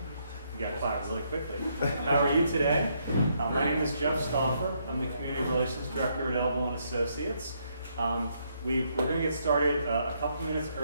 You got quiet really quickly. How are you today? My name is Jeff Stauffer. I'm the Community Relations Director at Elbow & Associates. We're going to get started a couple minutes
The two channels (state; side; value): inverted; both; correlation -0.74